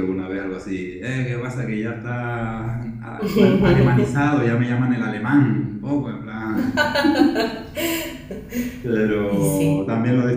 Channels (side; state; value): both; identical; correlation 1.00